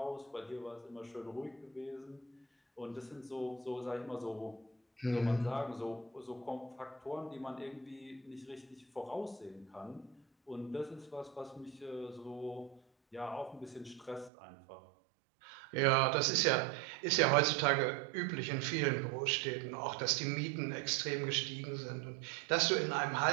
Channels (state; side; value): drops out; left; at 14.3 s